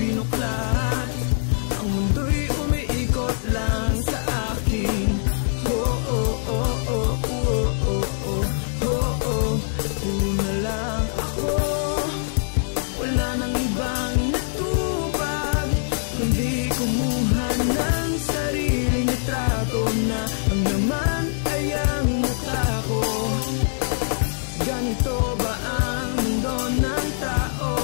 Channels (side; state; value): right; silent; digital silence